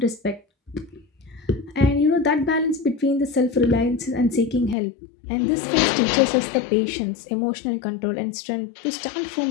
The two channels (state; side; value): drops out; right; at 4.8 s